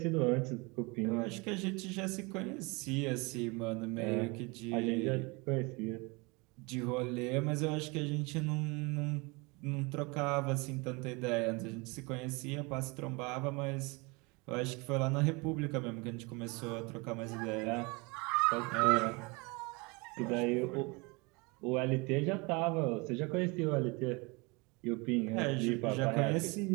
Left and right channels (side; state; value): left; quieter; 27.6 dB